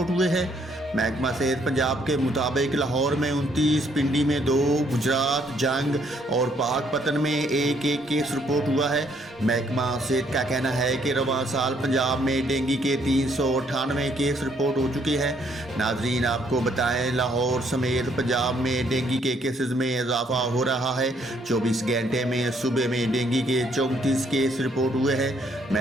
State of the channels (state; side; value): normal; both; correlation 0.68